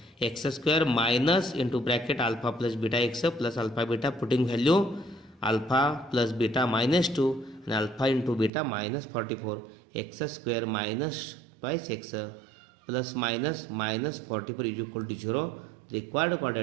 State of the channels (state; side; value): drops out; left; at 8.5 s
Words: x square minus into bracket alpha plus beta x plus alpha beta, putting value alpha plus beta minus 2 and alpha into beta minus 44, x square minus twice x plus minus minus 44 is equal to 0. Required